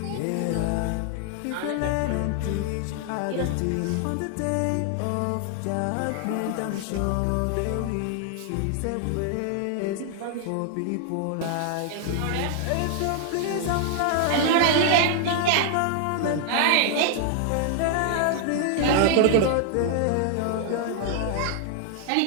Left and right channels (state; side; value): different; both; correlation 0.00